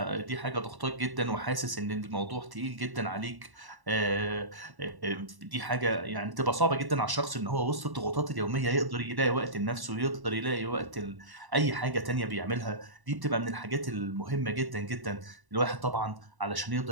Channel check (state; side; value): late; left; 1.1 ms